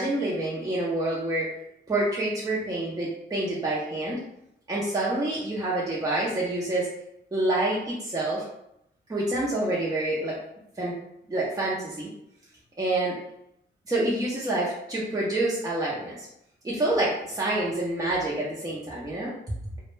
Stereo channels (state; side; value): normal; both; correlation 0.47